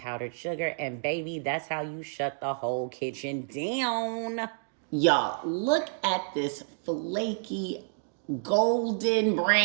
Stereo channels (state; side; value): silent; left; digital silence